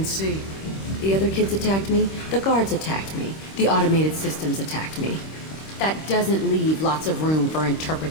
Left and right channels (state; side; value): late; right; 26 ms